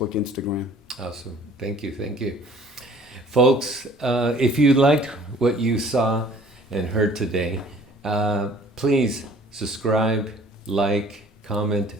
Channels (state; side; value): normal; both; correlation 0.53